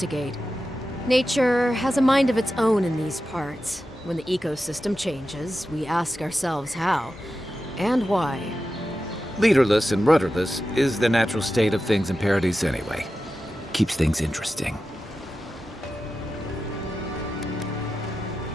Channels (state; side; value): normal; both; correlation 0.92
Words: Nature has a mind of its own in these parts. When the ecosystem changes, we ask ourselves how and why. Leaderless and rudderless is the natural state of things in Paradise anyway. Keeps things interesting.